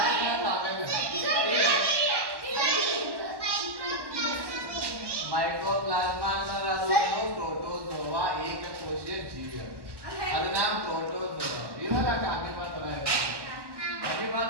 ಮೈಕ್ರೋಪ್ಲಾಸ್ಮಾ ಅನ್ನೋದು ಪ್ರೋಟೋಜೋವಾ ಏಕಕೋಶೀಯ ಜೀವಿ. ಅದು ನಾಮ್ ಪ್ರೋಟೋಜೋವಾ ಇರಲ್ಲ, ಅನಿಮಲ್ ತರ ಇರಲ್ಲ. ಅನಿಮಲ್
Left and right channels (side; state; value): left; late; 1.1 ms